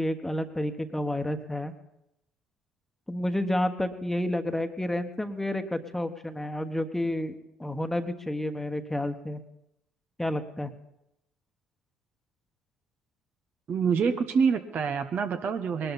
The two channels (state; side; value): normal; both; correlation 0.86